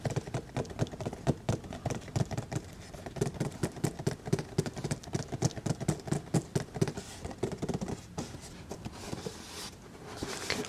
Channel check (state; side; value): identical; both; correlation 1.00